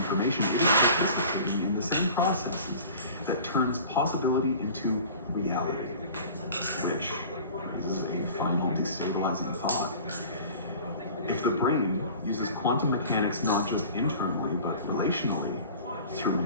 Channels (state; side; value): inverted; both; correlation -0.43